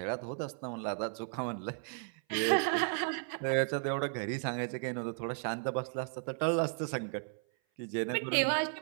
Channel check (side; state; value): left; silent; 55 dB below the other